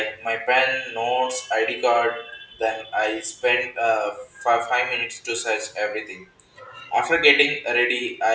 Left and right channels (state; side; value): identical; both; correlation 1.00